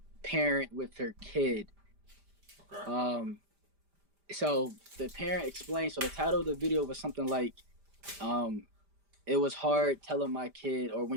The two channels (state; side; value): late; left; 5.0 ms